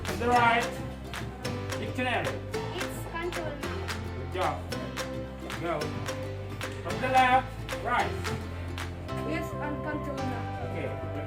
From the right, dictionary. It's countable noun. Good job. Go. From the left, rice. It's uncountable noun. Okay,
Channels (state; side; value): identical; both; correlation 1.00